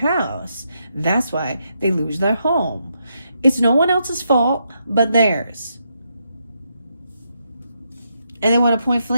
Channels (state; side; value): inverted; both; correlation -0.80